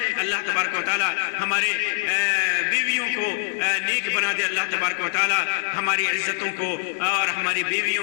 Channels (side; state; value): right; silent; digital silence